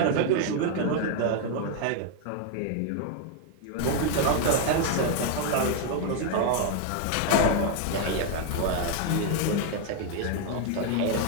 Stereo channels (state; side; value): different; both; correlation 0.00